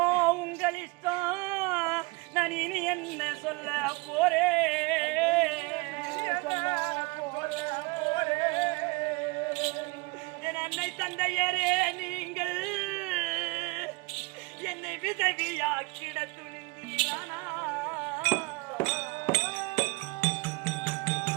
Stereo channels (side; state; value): left; quieter; 26.2 dB